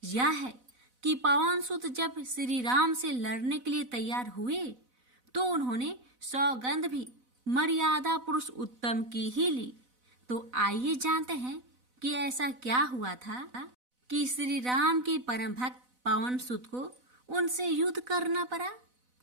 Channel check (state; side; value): late; left; 4.0 ms